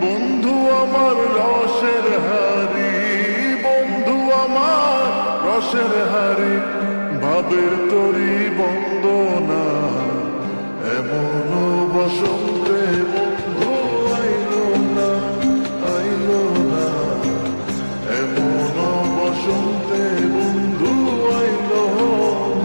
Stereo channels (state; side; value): inverted; both; correlation -1.00